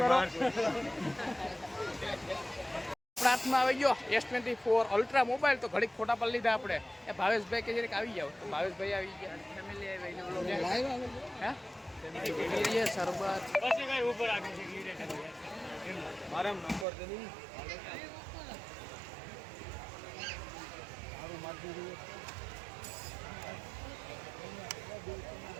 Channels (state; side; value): drops out; left; at 16.9 s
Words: હાથમાં આવી ગયો S24 અલ્ટ્રા મોબાઈલ, તો ઘડીક ફોટા પર લીધા આપણે। એ ભાવેશભાઈ કે જરીક આવી જાવ, તો ભાવેશભાઈ આવી ગયા, ફેમિલી આવી શરબત મારા નંબર તો નહીં